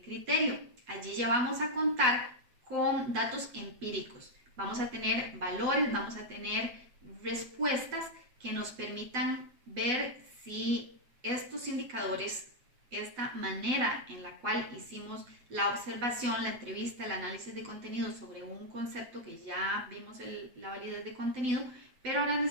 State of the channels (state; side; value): late; left; 8.1 ms